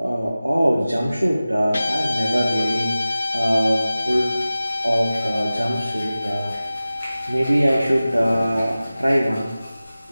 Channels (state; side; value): inverted; both; correlation -0.96